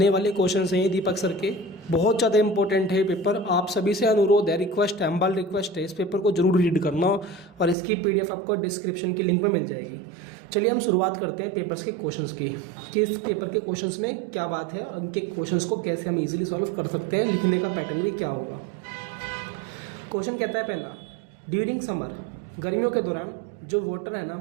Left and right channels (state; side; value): drops out; left; at 7.8 s